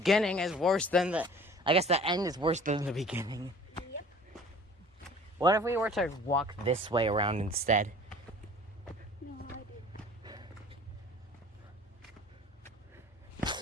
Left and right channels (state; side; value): normal; both; correlation 0.47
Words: is worse than the. I guess the end is worse than the beginning. Yep. What if we were to walk this way around instead? No,